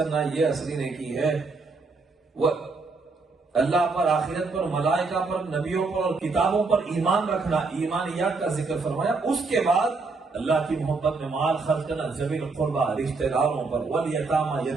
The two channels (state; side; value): quieter; left; 4.0 dB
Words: یہ اصلی نیکی ہے۔ اللہ پر، آخرت پر، ملائکہ پر، نبیوں پر اور کتابوں پر ایمان رکھنا، ایمانیات کا ذکر فرمایا، اس کے بعد اللہ کی محبت میں مال خرچ کرنا، ذوی القربہ رشتہ داروں پر، والیتامى